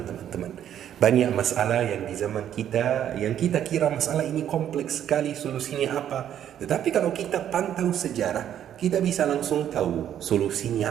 teman-teman. Banyak masalah yang di zaman kita, yang kita kira masalah ini kompleks sekali, solusinya apa. Tetapi kalau kita pantau sejarah, kita bisa langsung tahu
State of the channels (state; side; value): quieter; left; 10.3 dB